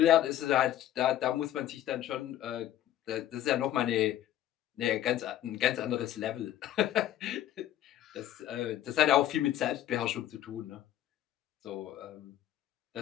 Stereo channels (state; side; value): quieter; right; 12.4 dB